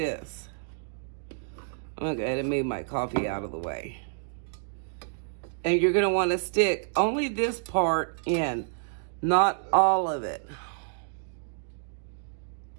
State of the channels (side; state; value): left; silent; digital silence